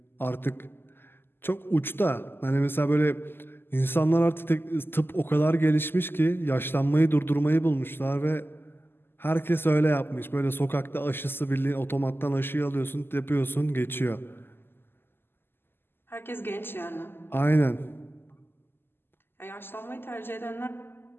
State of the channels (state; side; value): late; right; 0.10 ms